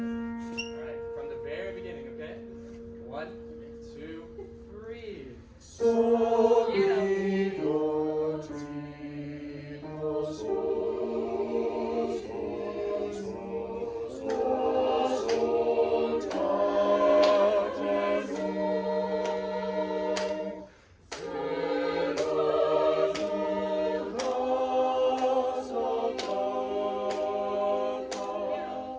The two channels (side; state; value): both; identical; correlation 1.00